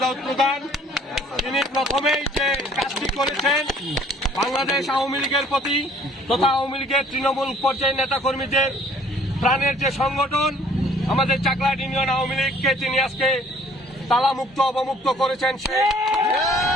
দাউদ প্রধান, তিনি প্রথমেই যে কাজটি করেছেন বাংলাদেশ আওয়ামী লীগের প্রতি তথা আওয়ামী লীগের তৃণমূল পর্যায়ের নেতাকর্মীদের প্রাণের যে সংগঠন আমাদের চাকলাহাট ইউনিয়ন আওয়ামী লীগকে তিনি আজকে তালামুক্ত অবমুক্ত করেছেন।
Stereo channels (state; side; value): normal; both; correlation 0.57